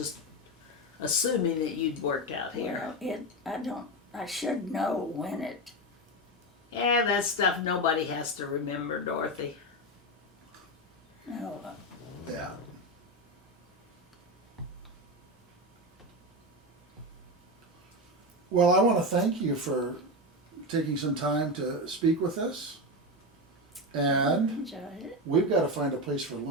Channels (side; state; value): both; normal; correlation 0.15